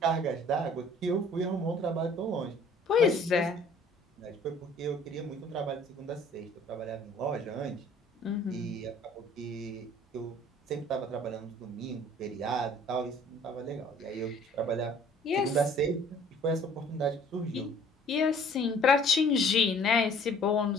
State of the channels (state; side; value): normal; both; correlation 0.54